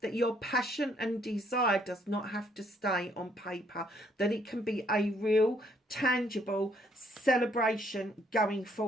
that your passion and desire does not have to stay on paper, that it can be a real, tangible celebration going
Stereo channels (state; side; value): normal; both; correlation 0.68